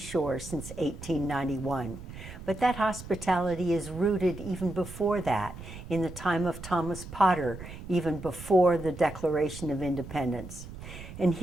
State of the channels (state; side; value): noise; right; rumble, 13 dB below the sound